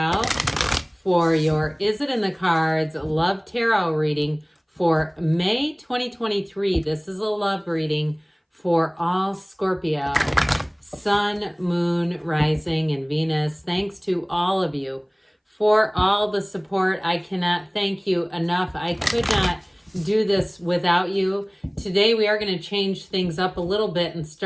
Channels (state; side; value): identical; both; correlation 1.00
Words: for your Is It in the Cards Love Tarot reading for May 2023. This is a love reading for all Scorpio, Sun, Moon, Rising, and Venus. Thanks to all of you for all the support. I cannot thank you enough. I could not do this without you. Today we are going to change things up a little bit and